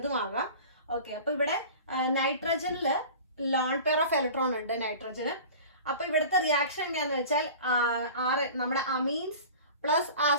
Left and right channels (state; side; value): inverted; both; correlation -0.39